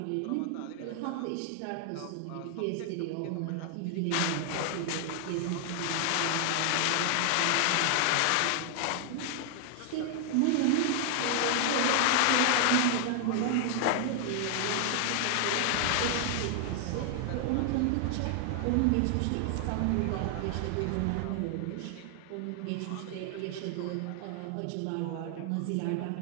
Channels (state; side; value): different; both; correlation 0.00